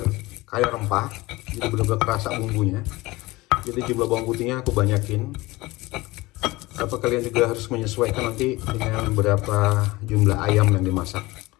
kaya rempah, jadi benar-benar kerasa bumbunya. Jadi jumlah bawang putihnya aku banyakin. Apa kalian juga harus menyesuaikan nanti dengan berapa jumlah ayam yang dimasak.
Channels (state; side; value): quieter; right; 20.8 dB